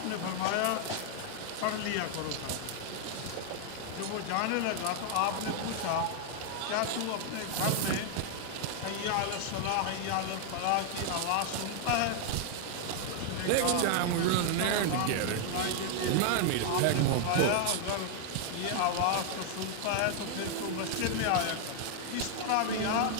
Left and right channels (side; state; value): both; different; correlation 0.00